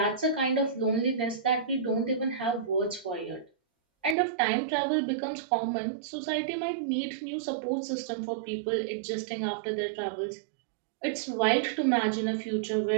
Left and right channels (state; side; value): drops out; left; at 4.2 s